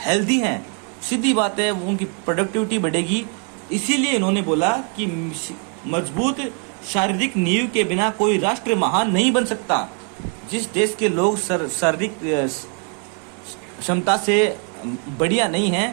हैं, सीधी बात है उनकी प्रोडक्टिविटी बढ़ेगी। इसीलिए इन्होंने बोला कि मजबूत शारीरिक नींव के बिना कोई राष्ट्र महान नहीं बन सकता। जिस देश के लोग शारीरिक क्षमता से बढ़िया नहीं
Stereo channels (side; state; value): left; quieter; 38.8 dB